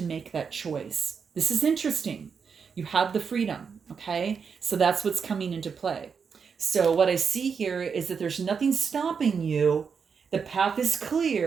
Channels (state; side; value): quieter; left; 6.1 dB